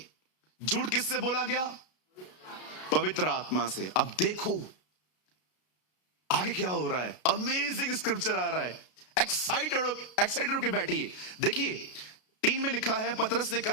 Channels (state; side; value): late; right; 33 ms